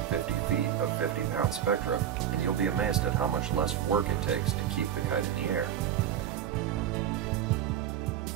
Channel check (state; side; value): quieter; left; 10.1 dB